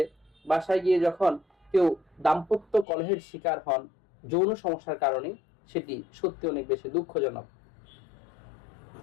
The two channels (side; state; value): right; drops out; at 2.9 s